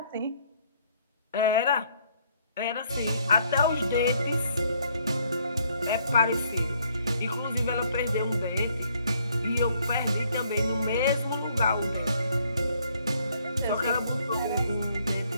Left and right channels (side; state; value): both; inverted; correlation -0.67